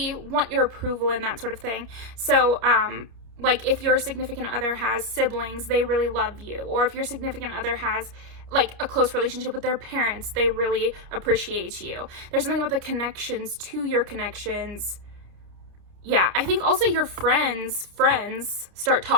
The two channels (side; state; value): left; late; 30 ms